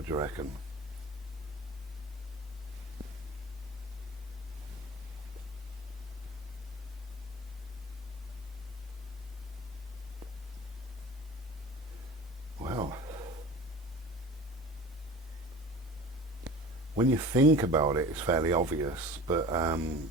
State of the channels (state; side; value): normal; both; correlation 0.39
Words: do you reckon? Well, when you think about it, it's fairly obvious, but